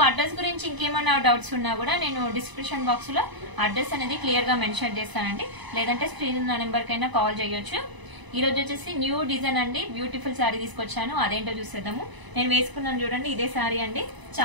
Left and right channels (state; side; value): late; left; 1.0 ms